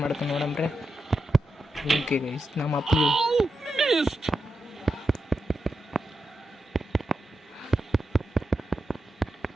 ಮಾಡ್ತಾನೆ ನೋಡಮ್ರೆ. ಓಕೆ ಗೈಸ್, ನಮ್ಮ ಅಪ್ಪಗೆ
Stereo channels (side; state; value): both; normal; correlation 0.88